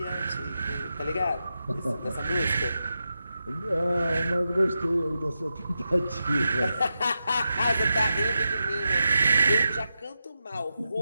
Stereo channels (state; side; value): inverted; both; correlation -0.89